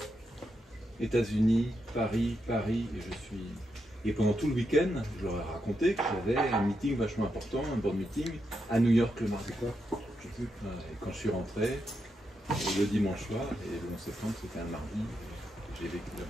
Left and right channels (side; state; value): both; normal; correlation 0.84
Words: États-Unis, Paris, et pendant tout le week-end, je leur ai raconté que j'avais un meeting vachement important, un board meeting, à New York le mardi. Et quand je suis rentré, le dimanche soir, et le 11 septembre, c'était un mardi, j'ai vécu là-bas.